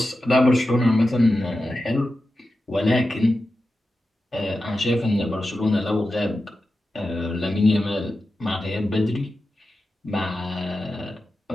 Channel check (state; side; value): normal; both; correlation 0.92